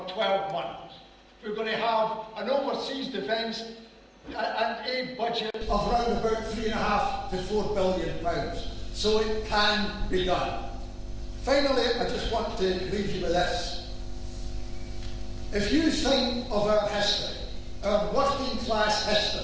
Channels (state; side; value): identical; both; correlation 1.00